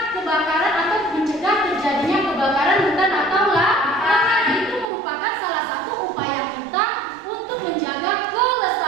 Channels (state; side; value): drops out; left; at 4.9 s